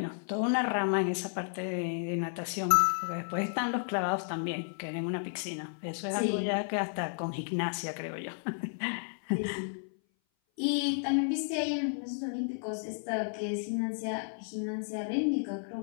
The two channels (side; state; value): right; silent; 56 dB below the other